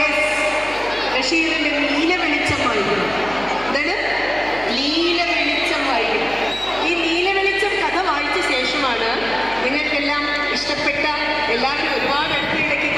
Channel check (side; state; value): left; noise; hum, 19 dB below the sound